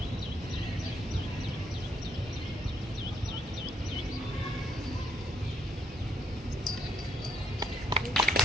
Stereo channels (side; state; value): both; normal; correlation 0.72